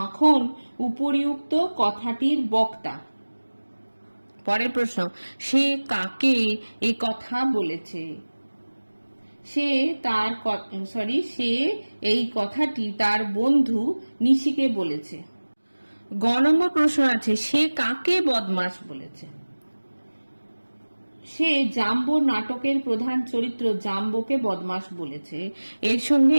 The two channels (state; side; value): inverted; both; correlation -1.00